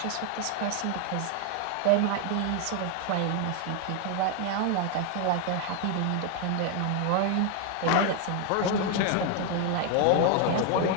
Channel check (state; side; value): different; both; correlation 0.01